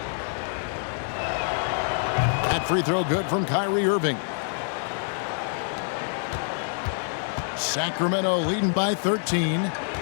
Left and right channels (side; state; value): right; silent; 61 dB below the other